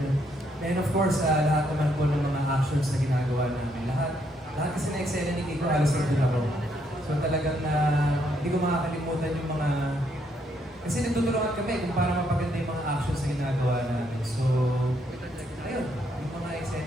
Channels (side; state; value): both; normal; correlation 0.74